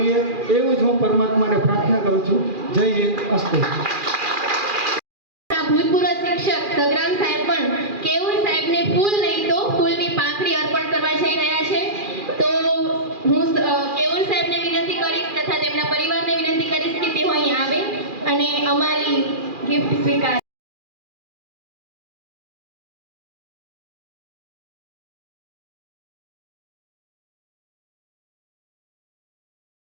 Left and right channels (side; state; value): left; late; 2.4 ms